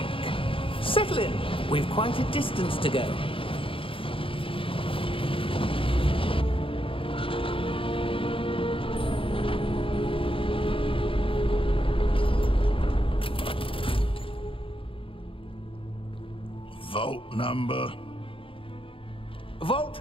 Settle in. We've quite a distance to go. Vault number?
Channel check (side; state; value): right; late; 0.26 ms